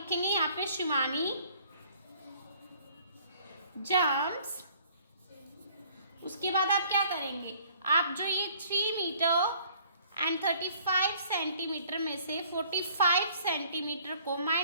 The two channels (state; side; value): inverted; both; correlation -0.57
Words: यहाँ पे शिवानी जंप्स। उसके बाद आप क्या करेंगे, आप जो ये 3 मीटर एंड 35 सेंटीमीटर में से 45 सेंटीमीटर को